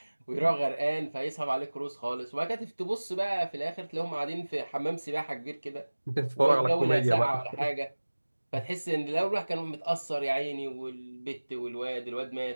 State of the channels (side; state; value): both; inverted; correlation -1.00